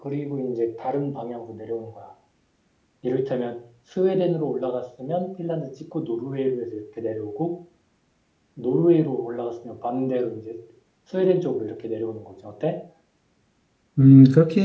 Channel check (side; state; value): both; identical; correlation 1.00